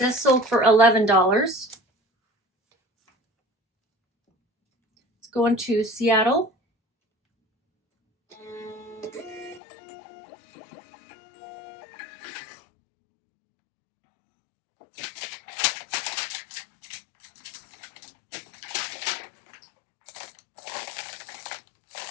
sold for $11. It's going to Seattle.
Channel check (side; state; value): right; drops out; at 9.6 s